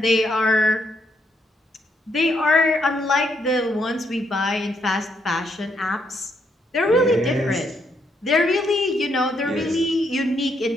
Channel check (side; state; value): both; normal; correlation 0.75